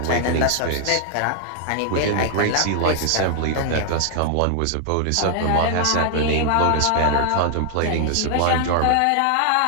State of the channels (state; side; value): different; both; correlation 0.00